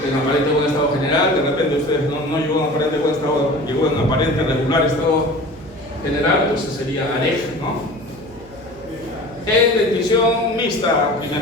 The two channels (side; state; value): right; noise; hum, 21 dB below the sound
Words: en aparente buen estado general. De repente ustedes no llegó en aparente buen estado, llegó en aparente regular estado general, entonces sería AREG, ¿no? En dentición mixta,